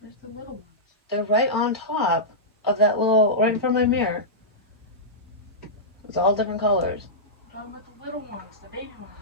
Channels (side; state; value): both; normal; correlation -0.14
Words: Where's the little ones? They're right on top of that little, right in front of my mirror. It's all different colors. I'm talking about the little ones, the baby ones.